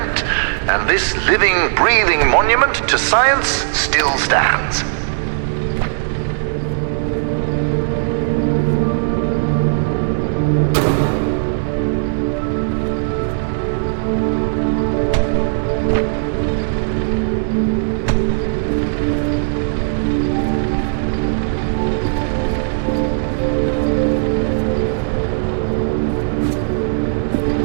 and this living, breathing monument to science still stands.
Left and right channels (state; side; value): silent; left; digital silence